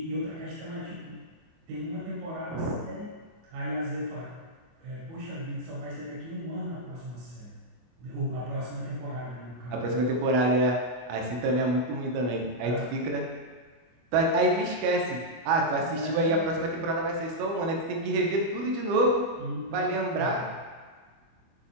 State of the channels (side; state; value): left; late; 24 ms